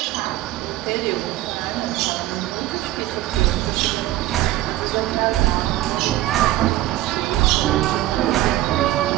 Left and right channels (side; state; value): left; quieter; 15.4 dB